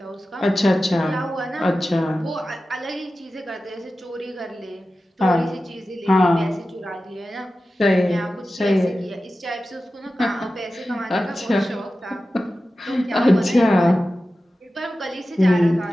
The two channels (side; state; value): both; normal; correlation 0.94